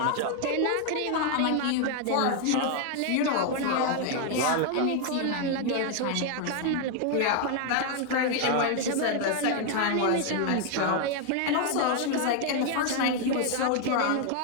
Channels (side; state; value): both; different; correlation 0.00